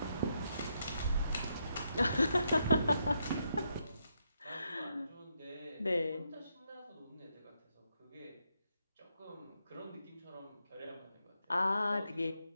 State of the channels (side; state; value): both; inverted; correlation -0.79